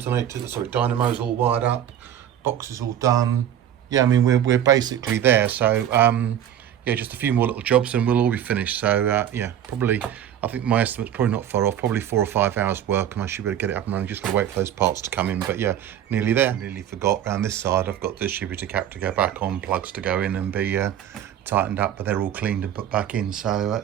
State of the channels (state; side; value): quieter; left; 10.3 dB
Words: all wired up, box is all done. Yeah, I mean we're basically there, so yeah, just a few more little jobs and we'll all be finished. So yeah, probably, I think my estimate's probably not far off, probably 4 or 5 hours work, and I should be able to get it up and running. Just gotta wait for those parts to come in, but yeah, nearly there. Nearly forgot, around this side I've got the distributor cap to go back on, plugs to go in and be tightened up, but they're all cleaned and put back in. So